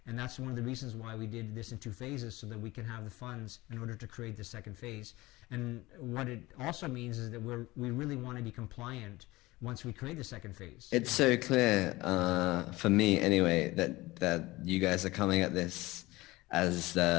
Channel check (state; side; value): quieter; right; 19.9 dB